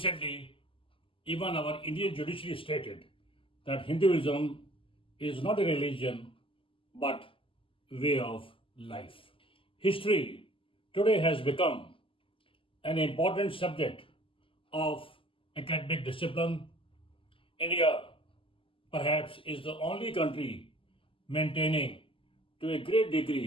even our Indian judiciary stated that Hinduism is not a religion but way of life. History today has become an important subject of academic discipline. India perhaps is the only country maintaining to a great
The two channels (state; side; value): late; right; 0.25 ms